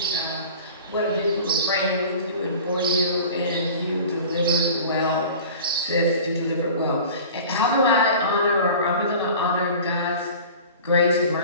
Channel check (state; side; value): inverted; both; correlation -0.40